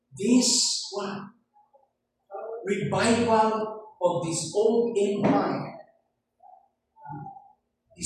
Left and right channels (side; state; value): both; identical; correlation 1.00